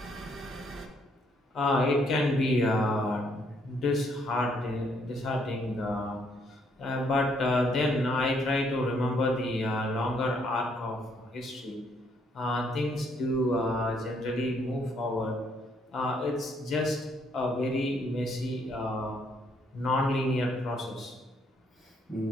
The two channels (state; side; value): normal; both; correlation 0.70